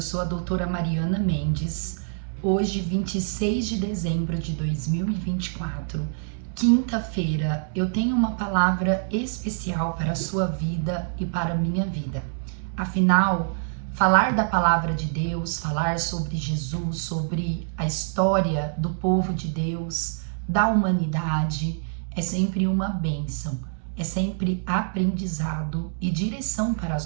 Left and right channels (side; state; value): left; silent; digital silence